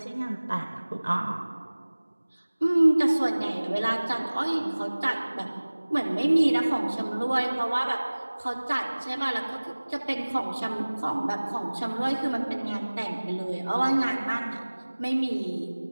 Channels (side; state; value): both; inverted; correlation -1.00